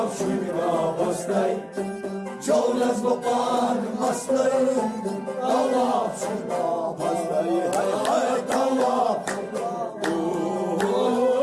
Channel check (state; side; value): identical; both; correlation 1.00